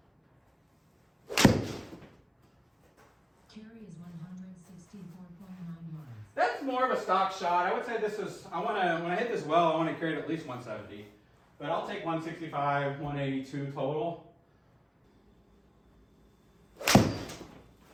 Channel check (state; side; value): identical; both; correlation 1.00